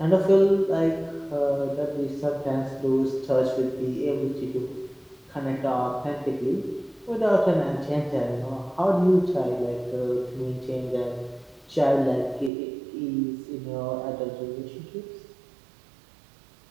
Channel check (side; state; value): left; drops out; at 12.5 s